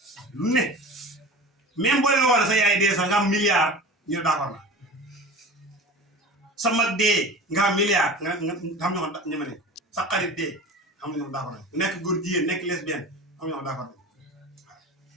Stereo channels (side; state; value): both; normal; correlation 0.35